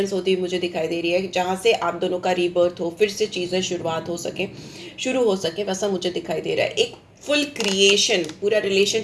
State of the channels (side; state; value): both; identical; correlation 1.00